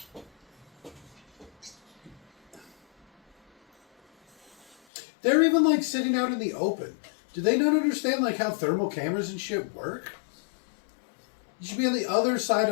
They're even like sitting out in the open. Do they not understand like how thermal cameras and shit work? You should be on the other side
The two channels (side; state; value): right; drops out; at 4.8 s